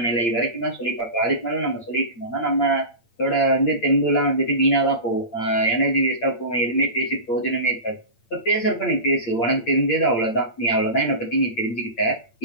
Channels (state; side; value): late; right; 8.7 ms